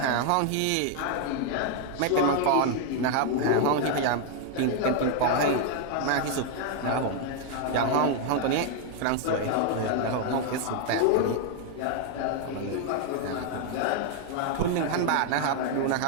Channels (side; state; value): both; different; correlation 0.00